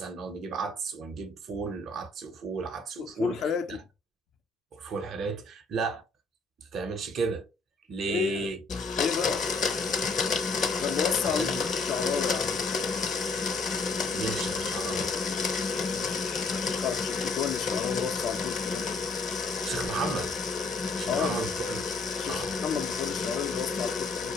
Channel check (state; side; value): quieter; right; 3.3 dB